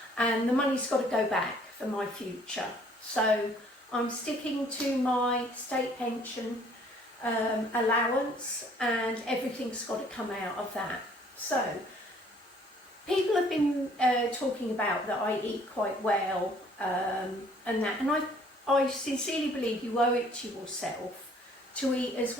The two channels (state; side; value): normal; both; correlation 0.59